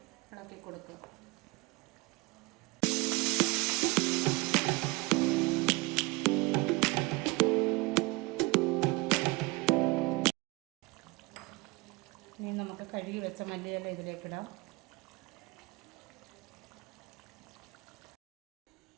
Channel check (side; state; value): left; quieter; 24.1 dB